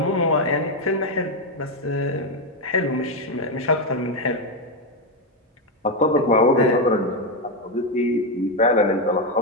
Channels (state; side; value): normal; both; correlation 0.06